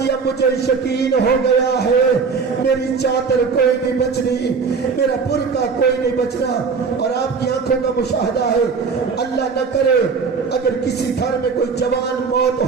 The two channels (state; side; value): quieter; left; 5.3 dB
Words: اب مجھے یقین ہو گیا ہے میری چادر کوئی نہیں بچنی، میرا برقع کوئی نہیں بچنا۔ اور آپ کی آنکھوں کا مشاہدہ ہے، اللہ نہ کرے اگر کسی گھر میں کوئی جوان موت